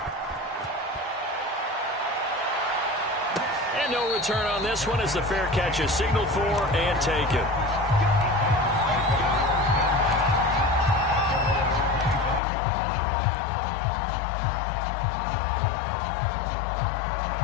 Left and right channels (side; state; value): right; drops out; at 12.4 s